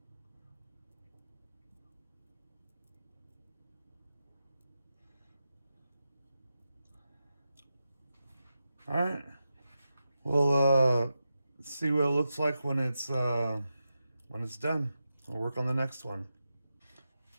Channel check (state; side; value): inverted; both; correlation -0.89